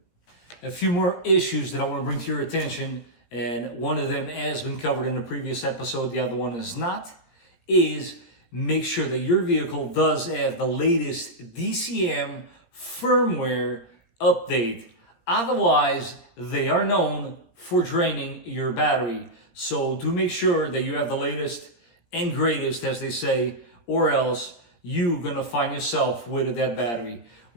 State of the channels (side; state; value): right; late; 17 ms